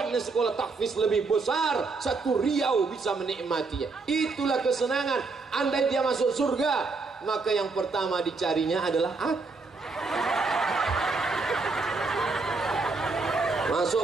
sekolah tahfiz lebih besar, satu Riau bisa menikmatinya. Itulah kesenangan. Andai dia masuk surga, maka yang pertama dicarinya adalah aku. Masuk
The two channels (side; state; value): left; quieter; 4.0 dB